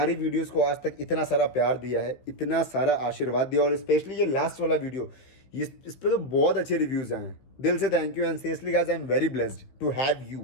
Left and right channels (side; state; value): right; late; 16 ms